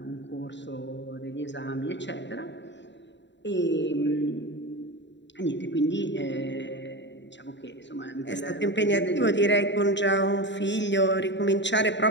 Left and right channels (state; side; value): late; right; 0.52 ms